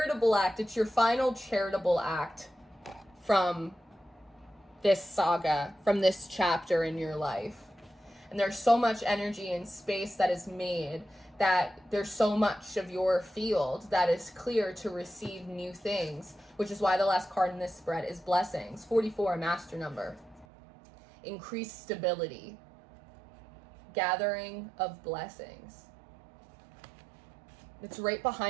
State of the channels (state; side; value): drops out; left; at 20.5 s